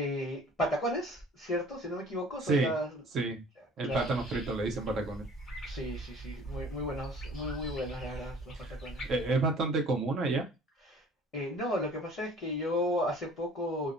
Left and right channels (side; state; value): both; normal; correlation 0.50